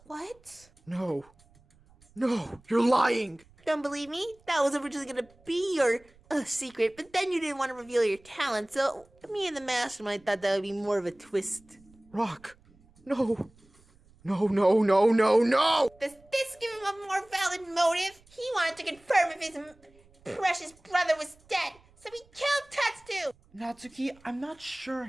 what? No, you're lying! Don't believe me? That was originally gonna be your secret, but then you didn't want to reveal your talent, so me and the mastermind thought that would be more of a twist. Rock, no! Does this give him a more valid motive? He wanted to confirm if his precious brother was dead, so he killed Tetsu! Natsuki, I'm not sure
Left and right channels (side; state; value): right; noise; rumble, 29 dB below the sound